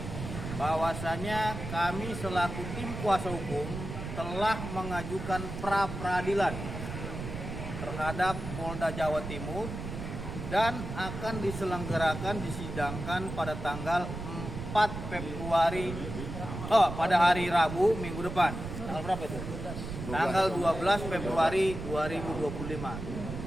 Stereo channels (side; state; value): right; noise; rumble, 7 dB below the sound